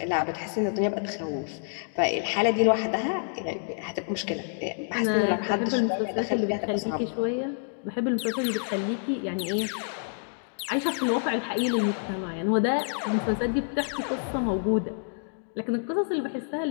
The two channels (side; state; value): right; silent; digital silence